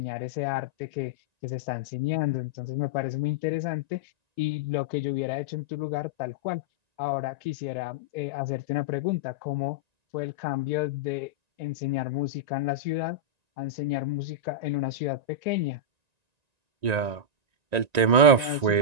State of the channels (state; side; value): late; left; 1.9 ms